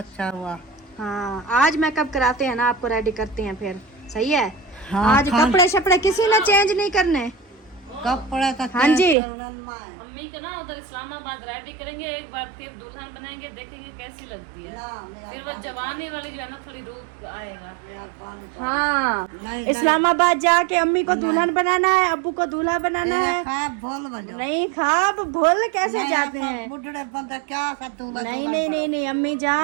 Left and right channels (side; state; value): left; drops out; at 9.2 s